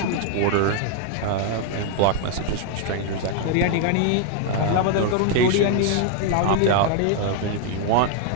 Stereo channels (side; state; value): both; different; correlation 0.00